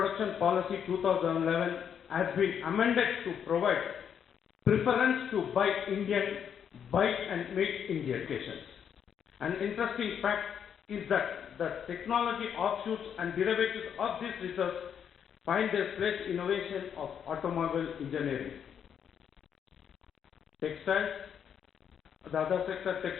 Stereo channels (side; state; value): right; quieter; 8.2 dB